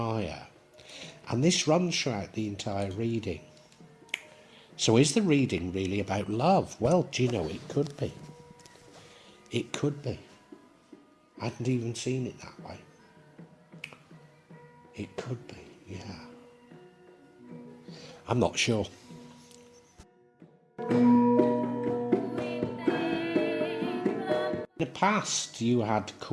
And this runs throughout the entire reading. So is the reading really about love? Well, do you know, it could be. It could be. I hadn't even seen it that way. It could be, yeah. I'm not sure. In the past, you had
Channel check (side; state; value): both; identical; correlation 1.00